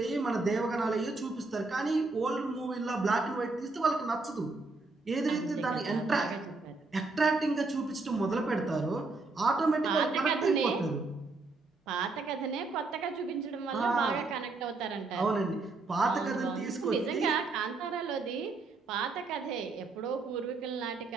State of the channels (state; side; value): quieter; left; 3.6 dB